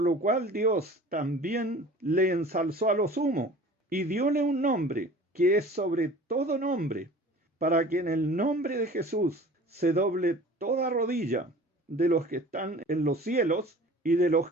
cual Dios también le ensalzó a lo sumo, y dióle un nombre, que es sobre todo nombre, para que en el nombre de Jesús se doble toda rodilla, de los que están en los cielos, y de los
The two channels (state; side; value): normal; both; correlation 0.44